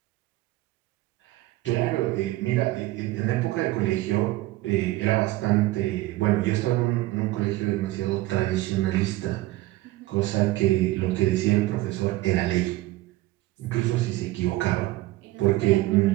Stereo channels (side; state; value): left; quieter; 17.6 dB